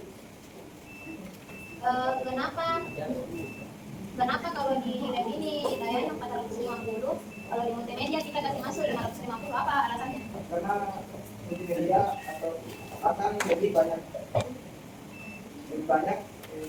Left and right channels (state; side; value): identical; both; correlation 1.00